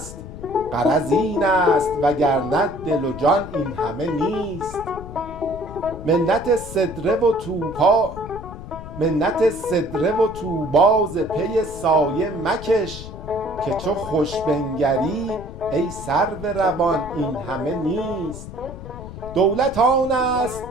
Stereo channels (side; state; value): left; noise; rumble, 12 dB below the sound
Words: غرض این است وگرنه دل و جان این همه نیست. منت سدره و طوبی ز پی سایه مکش، که چو خوش بنگری ای سرو روان این همه نیست. دولت آن است